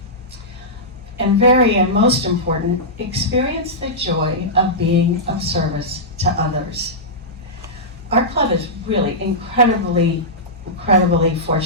And most important, experience the joy of being of service to others. Our club is really incredibly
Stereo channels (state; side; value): normal; both; correlation -0.13